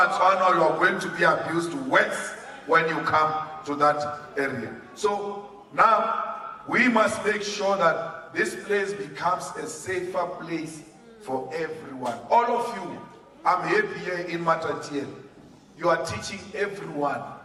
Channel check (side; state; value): both; identical; correlation 1.00